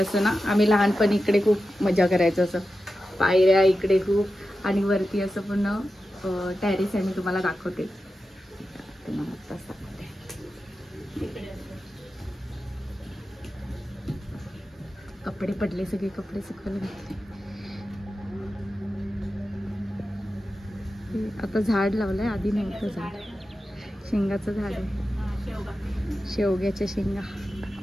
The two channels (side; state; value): both; normal; correlation 0.92